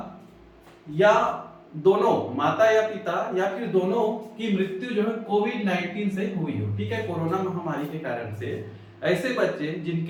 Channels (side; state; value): both; identical; correlation 1.00